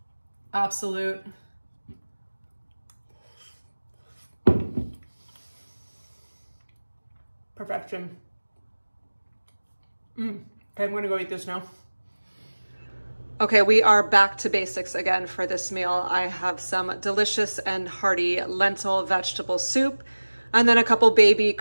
absolute perfection. Okay, I'm gonna go eat this now. Okay, we are back to basics again for this meal. I have some delicious and hearty lentil vegetable soup, and then a couple baby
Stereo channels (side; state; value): both; inverted; correlation -1.00